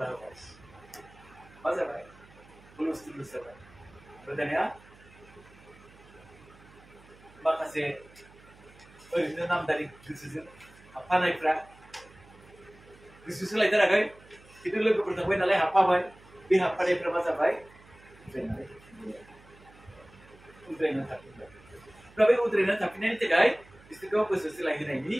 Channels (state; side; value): noise; right; hum, 24 dB below the sound